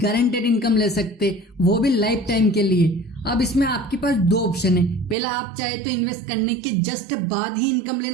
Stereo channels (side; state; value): left; drops out; at 5.2 s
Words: इनकम ले सकते, वो भी लाइफ टाइम के लिए। अब इसमें आपके पास दो ऑप्शन है। पहला, आप चाहे तो इन्वेस्ट करने के जस्ट बाद ही इनकम